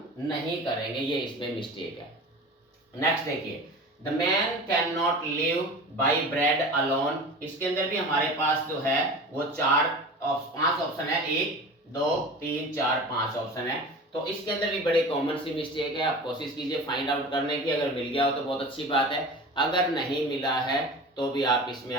नहीं करेंगे, ये इसमें मिस्टेक है। नेक्स्ट देखिए, the man can not live by bread alone. इसके अंदर भी हमारे पास जो है वो 5 ऑप्शन है, 1 2 3 4 5 ऑप्शन है। तो इसके अंदर भी बड़े कॉमन सी मिस्टेक है, आप कोशिश कीजिए फाइंड आउट करने की। अगर मिल गया हो तो बहुत अच्छी बात है, अगर नहीं मिला है तो भी आप इसमें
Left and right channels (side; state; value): both; normal; correlation 0.35